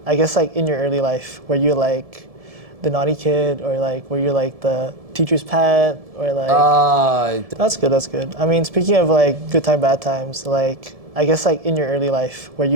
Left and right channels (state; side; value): late; left; 1.7 ms